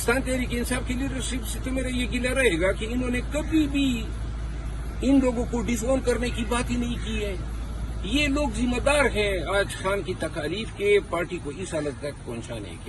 تحریک انصاف کی لیڈرشپ سے تو میرا یہ گلہ رہے گا کہ انہوں نے کبھی بھی ان لوگوں کو ڈس اون کرنے کی بات ہی نہیں کی ہے۔ یہ لوگ ذمہ دار ہیں آج خان کی تکالیف کے، پارٹی کو اس حالت تک پہنچانے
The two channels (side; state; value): both; identical; correlation 1.00